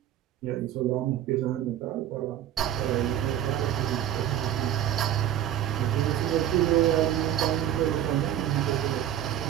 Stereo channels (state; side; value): quieter; left; 11.2 dB